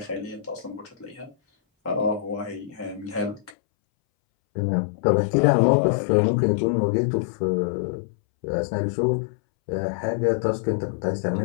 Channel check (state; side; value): drops out; right; at 3.5 s